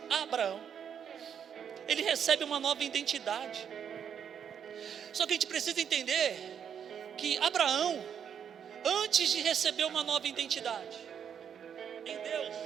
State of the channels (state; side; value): quieter; left; 8.1 dB